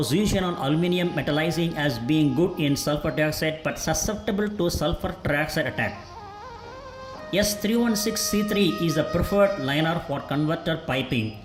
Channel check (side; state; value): both; identical; correlation 1.00